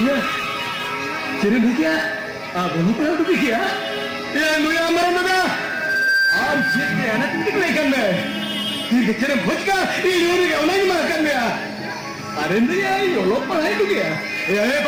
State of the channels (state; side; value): identical; both; correlation 1.00